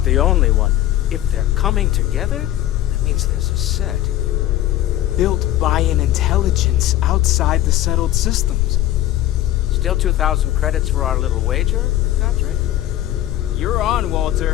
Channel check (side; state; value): right; quieter; 13.7 dB